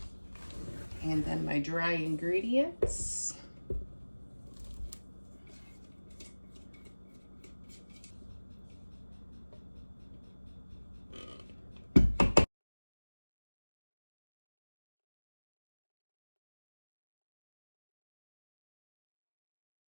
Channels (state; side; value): inverted; both; correlation -1.00